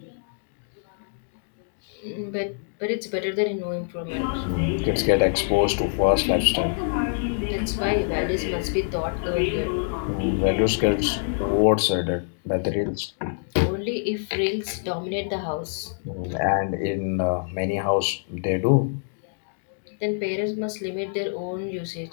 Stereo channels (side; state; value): right; silent; digital silence